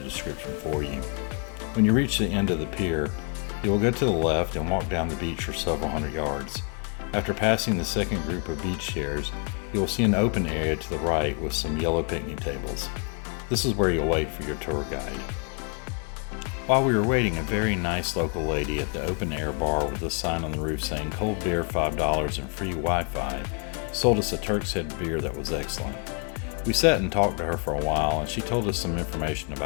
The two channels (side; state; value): right; quieter; 38.3 dB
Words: for you. When you reach the end of the pier, you will go to the left and walk down the beach for several hundred yards. After passing the second group of beach chairs, you will see an open area to the right with some yellow picnic tables. This is where you'll wait for your tour guide. While we were waiting, a very nice local lady at the open air bar with a sign on the roof saying cold beer $5 and free Wi-Fi sold us a Turk's Head beer that was excellent. We sat and talked to her for a while, and she told us some information